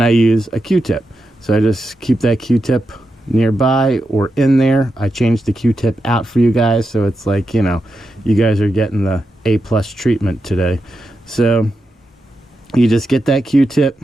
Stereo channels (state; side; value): normal; both; correlation 0.87